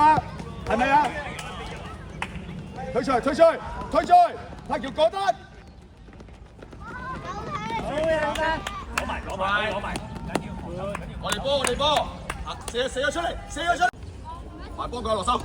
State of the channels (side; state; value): both; identical; correlation 1.00